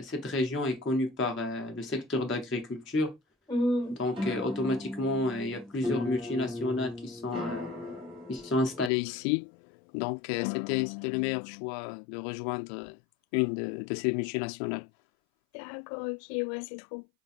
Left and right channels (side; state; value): right; drops out; at 8.9 s